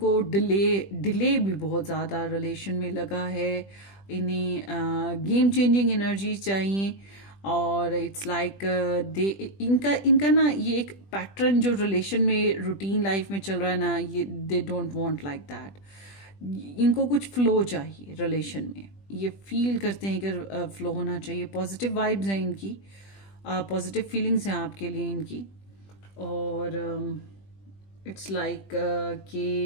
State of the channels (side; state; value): right; late; 20 ms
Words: डिले भी बहुत ज़्यादा रिलेशन में लगा है। इन्हें गेम चेंजिंग एनर्जी चाहिए, और इट्स लाइक दे इनका ना ये एक पैटर्न जो रिलेशन में, रूटीन लाइफ में चल रहा है ना, ये दे डोंट वांट लाइक दैट। इनको कुछ फ्लो चाहिए रिलेशन में, ये फील करते हैं कि फ्लो होना चाहिए। पॉजिटिव वाइब्स हैं इनकी, पॉजिटिव फीलिंग्स हैं आपके लिए इनकी, और इट्स लाइक